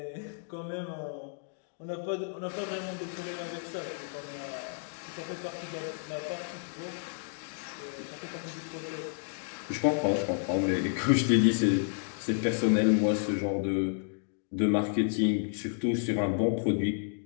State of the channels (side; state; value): right; silent; digital silence